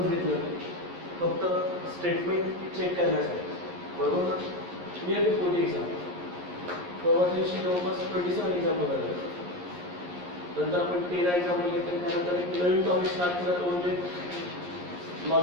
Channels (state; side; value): late; left; 11 ms